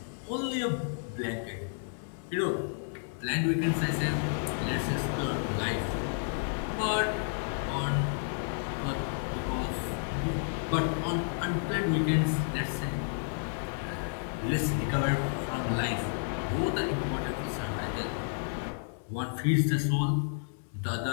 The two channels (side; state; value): right; silent; digital silence